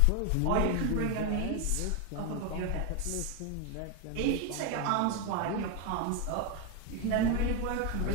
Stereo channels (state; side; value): different; both; correlation 0.01